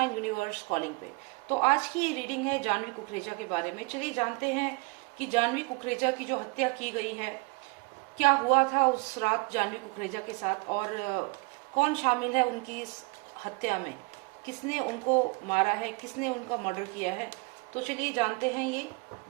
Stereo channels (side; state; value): left; quieter; 29.0 dB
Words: universe calling पे। तो आज की ये रीडिंग है जानवी कुकरेजा के बारे में। चलिए जानते हैं कि जानवी कुकरेजा की जो हत्या की गई है, क्या हुआ था उस रात जानवी कुकरेजा के साथ और कौन शामिल है उनकी इस हत्या में, किसने उनको मारा है, किसने उनका मर्डर किया है। तो चलिए जानते हैं। ये